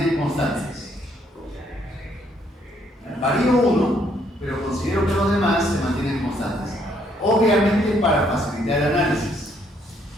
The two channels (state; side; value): normal; both; correlation 0.69